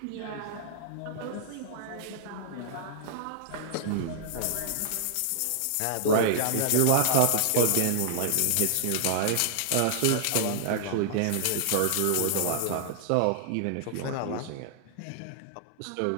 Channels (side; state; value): both; different; correlation -0.01